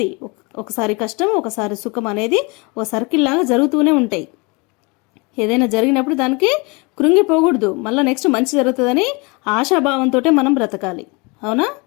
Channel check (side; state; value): right; quieter; 28.5 dB